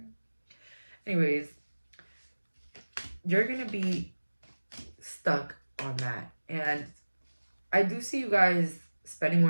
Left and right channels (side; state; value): both; inverted; correlation -1.00